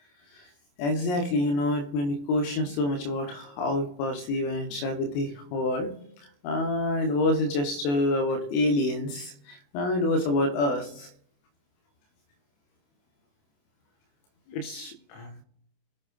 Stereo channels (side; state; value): right; late; 28 ms